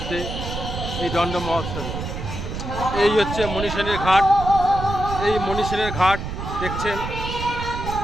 এই দণ্ড মহোৎসবে। এই হচ্ছে মণিসেনের ঘাট। এই মণিসেনের ঘাট দেখছেন,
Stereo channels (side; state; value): right; noise; rumble, 6 dB below the sound